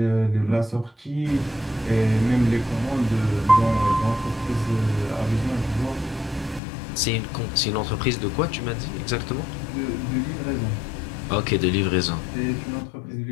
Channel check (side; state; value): right; drops out; at 6.6 s